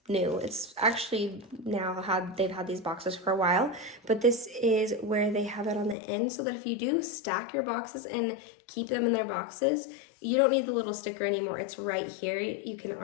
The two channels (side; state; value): right; drops out; at 6.0 s